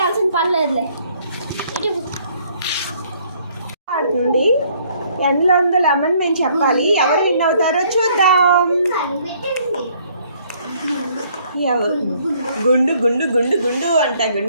పని లేదులే ఆడుతుంది ఎందులో ఉందో లెమన్ మేము చెప్పాలి ఎవరు విన్ అవుతారో చూద్దాం గుండు గుండు గుండు గుండు అంట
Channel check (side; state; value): both; inverted; correlation -0.63